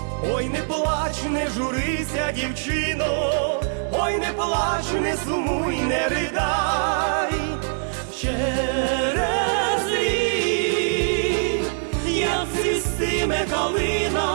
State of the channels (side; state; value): left; silent; digital silence